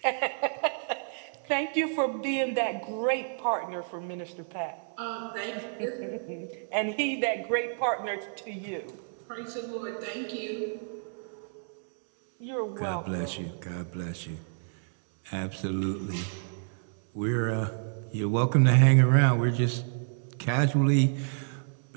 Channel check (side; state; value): left; silent; digital silence